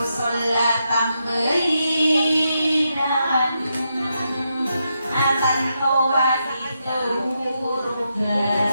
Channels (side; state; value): both; inverted; correlation -0.83